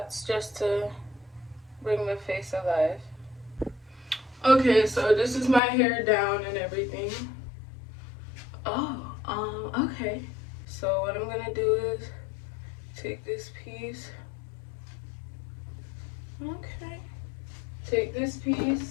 just to bring my face alive. Okay, so this is my hair down and everything. Oh, okay. So what I'm gonna do is take this piece. Okay. Take this piece.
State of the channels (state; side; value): drops out; right; at 5.6 s